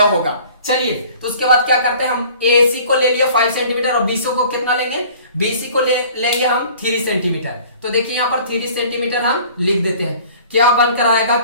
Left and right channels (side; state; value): both; inverted; correlation -0.49